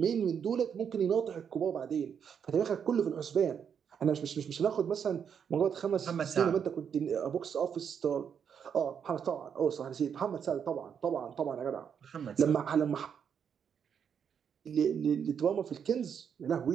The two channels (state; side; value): quieter; left; 7.6 dB